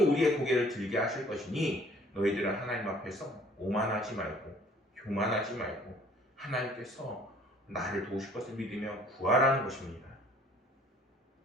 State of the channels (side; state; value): both; normal; correlation 0.56